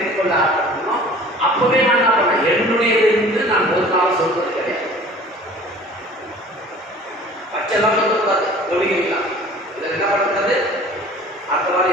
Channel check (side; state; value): both; normal; correlation 0.46